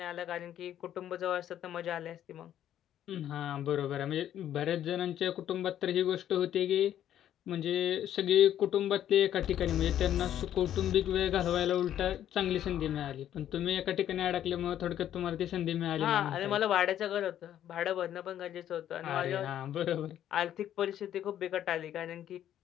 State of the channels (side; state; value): right; quieter; 11.0 dB